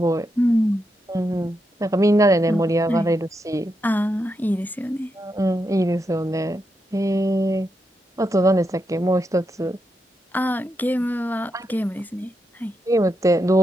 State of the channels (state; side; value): normal; both; correlation 0.84